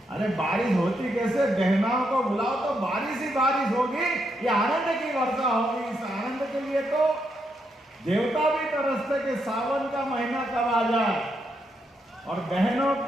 अरे बारिश होती कैसे, बहनों को बुलाओ तो बारिश ही बारिश होगी, ये आनंद की वर्षा होगी। इस आनंद के लिए तो देवता भी तरसते कि सावन का महीना कब आ जाए। और बहनों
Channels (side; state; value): both; normal; correlation 0.80